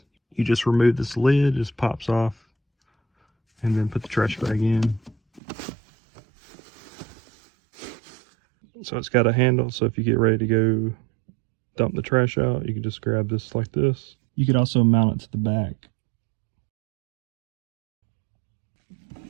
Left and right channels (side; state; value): left; drops out; at 5.4 s